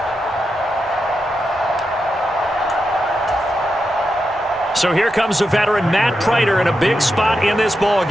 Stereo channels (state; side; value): normal; both; correlation 0.87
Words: So here comes the veteran Matt Prater in a big spot in this